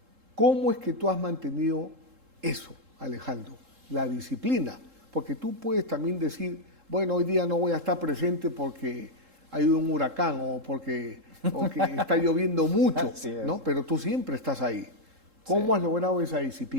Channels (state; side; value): late; left; 3.7 ms